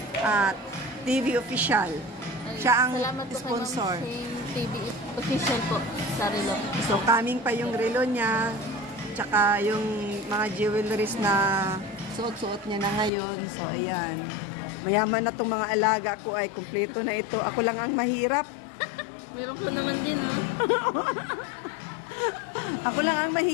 TV official. Siya ang Salamat po sponsor. kay Ma'am Shane TV official po sa relo. So, kaming pa yung relo niya. Tsaka yung mga jewelries na suot-suot niya na ngayon. So, ayan. Mayaman na itong mga alaga ko ay kumpleto na ito. Ako lang ang mahirap. Meron po naman din, ha? Ako lang ang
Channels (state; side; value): drops out; right; at 13.1 s